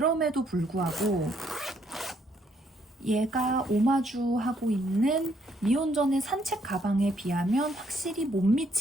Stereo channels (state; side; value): normal; both; correlation 0.71